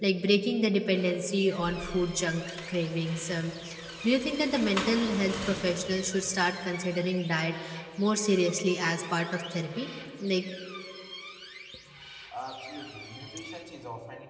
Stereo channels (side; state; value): both; identical; correlation 1.00